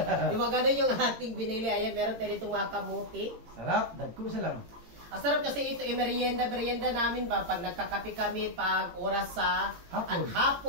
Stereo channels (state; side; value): late; left; 18 ms